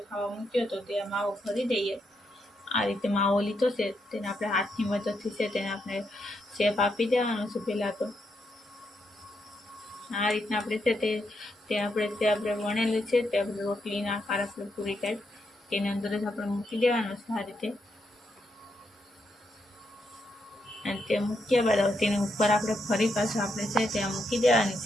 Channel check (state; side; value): normal; both; correlation 0.80